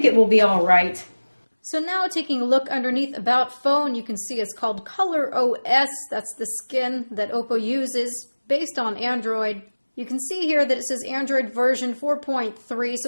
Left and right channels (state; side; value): inverted; both; correlation -1.00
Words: it will be all right. So now taking a look underneath About Phone, you can see it's called Color OS. That's the skin that Oppo uses based on Android. You can see here that it says Android version 4.3,